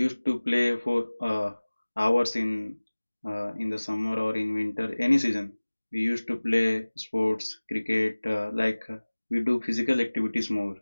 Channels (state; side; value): inverted; both; correlation -1.00